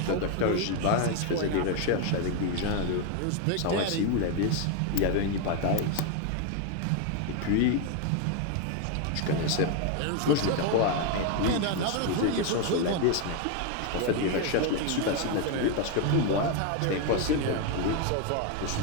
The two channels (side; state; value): both; different; correlation 0.01